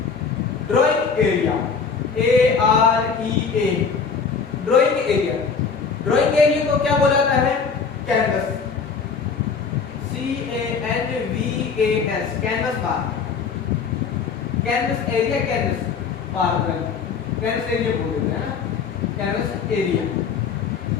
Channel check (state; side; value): quieter; right; 5.6 dB